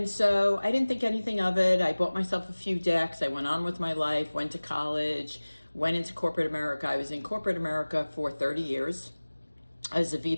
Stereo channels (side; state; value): both; inverted; correlation -1.00